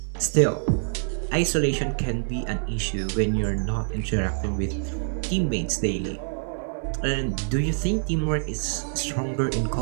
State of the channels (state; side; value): silent; left; digital silence